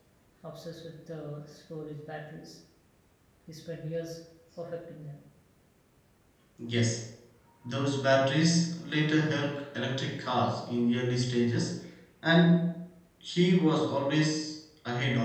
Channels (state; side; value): identical; both; correlation 1.00